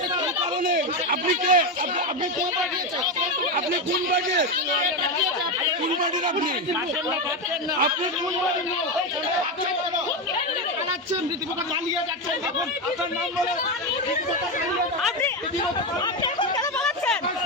আপনি কে? আপনি কোন পার্টির? আপনি কোন পার্টির? কোন পার্টির আপনি? আপনি কোন পার্টির? পালাচ্ছেন, রীতিমতো পালিয়ে যাচ্ছেন। আপনার নাম বলে আপনি এখন কেন পালাচ্ছেন?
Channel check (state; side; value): normal; both; correlation 0.12